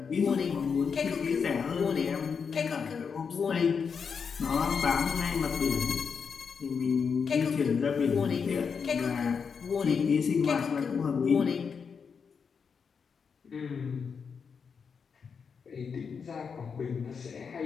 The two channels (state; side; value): quieter; right; 6.1 dB